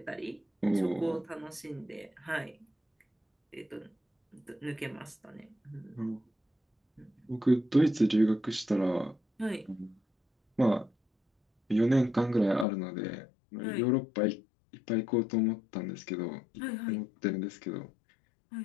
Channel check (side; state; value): right; drops out; at 12.7 s